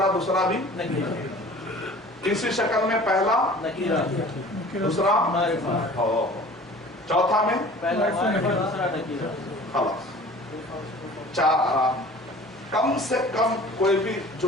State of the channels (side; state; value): both; normal; correlation 0.45